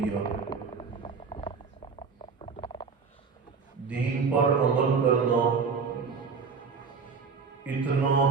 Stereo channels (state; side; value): quieter; left; 5.4 dB